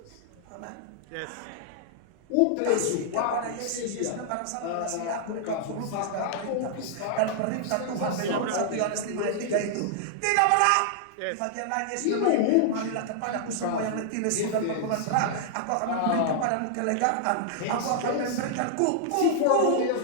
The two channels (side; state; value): both; different; correlation -0.01